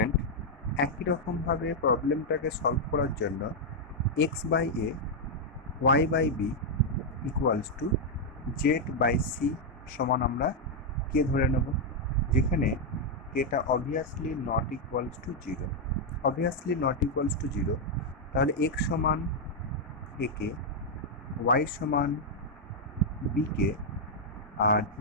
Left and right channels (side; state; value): both; normal; correlation -0.02